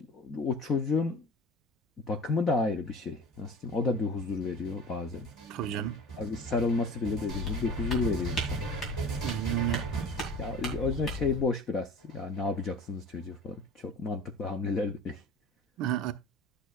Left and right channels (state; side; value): normal; both; correlation 0.39